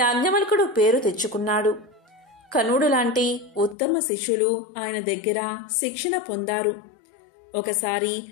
పేరు తెచ్చుకున్నాడు. కనుడు లాంటి ఉత్తమ శిష్యులు ఆయన దగ్గర శిక్షణ పొందారు. ఒకసారి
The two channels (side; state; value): right; drops out; at 3.8 s